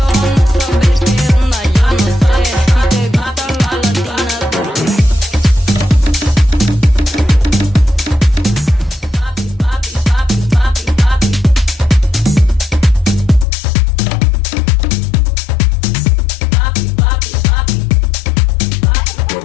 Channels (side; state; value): right; drops out; at 13.5 s